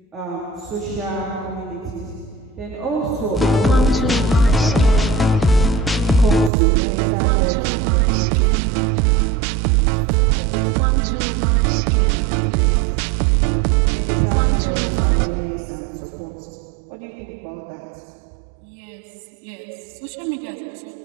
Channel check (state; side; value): drops out; left; at 6.5 s